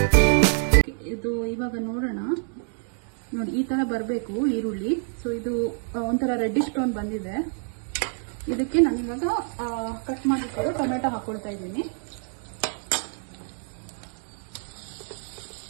ನೋಡಿ, ಈ ತರ ಬರಬೇಕು ಈರುಳ್ಳಿ. ಸೊ ಇದು ಒಂಥರ ರೆಡ್ಡಿಶ್ ಟೋನ್ ಬಂದಿದೆ. ಇದಕ್ಕೆ ನಾನು ಇವಾಗ ಕಟ್ ಮಾಡಿಕೊಂಡು ಟೊಮೆಟೊ ಹಾಕೊಳ್ತಾ ಇದ್ದೀನಿ.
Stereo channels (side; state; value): left; silent; 60 dB below the other